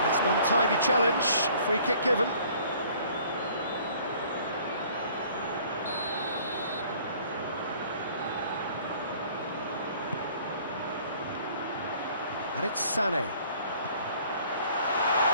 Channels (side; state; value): both; inverted; correlation -0.55